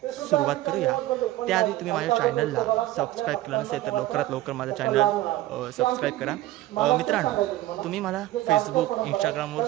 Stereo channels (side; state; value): left; quieter; 15.8 dB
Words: सुरुवात करूया. त्याआधी तुम्ही माझ्या चॅनलला सबस्क्राईब केलं नसेल तर लवकरात लवकर माझं चॅनल सबस्क्राईब करा. मित्रांनो, तुम्ही मला फेसबुक इंस्टाग्रामवर